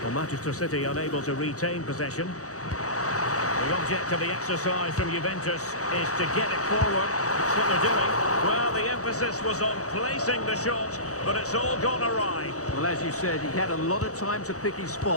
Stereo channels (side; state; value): right; late; 0.66 ms